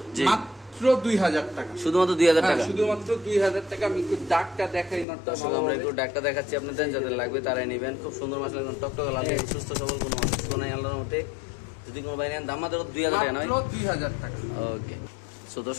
মাত্র 2,000 টাকা। শুধুমাত্র 2,000 টাকা? শুধুমাত্র 2,000 টাকা। আমি একটু ডাকটা দেখাই নরটা। আমরা একটু ডাকটা দেখাচ্ছি আপনাদের, যাদের লাগবে তারাই নেবেন। খুব সুন্দর মাসলা, টকটক লাল, সুস্থ সবল, কোনো অসুস্থ নাই আল্লাহর মতে। যদি কোনো ভাই নেন দাম মাত্র 2,000 টাকা নয়? 2,000 টাকা। ওকে। সো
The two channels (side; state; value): right; drops out; at 5.1 s